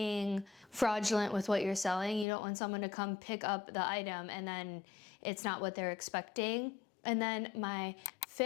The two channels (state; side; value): drops out; right; at 2.2 s